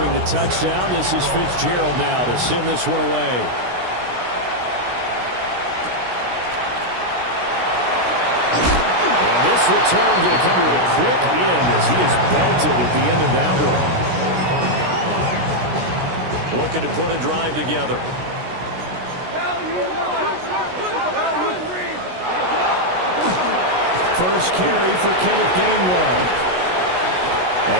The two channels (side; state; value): left; late; 16 ms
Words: the touchdown, this is Fitzgerald now to send this one away. And this return going to come to a quick end as he is belted at the end of that one. Looking to put a drive together. First carry for Kenneth Gainwell.